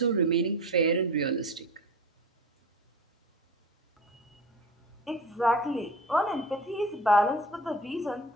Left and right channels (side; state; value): both; normal; correlation 0.35